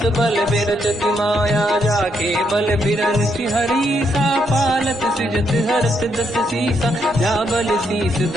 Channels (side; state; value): both; normal; correlation 0.76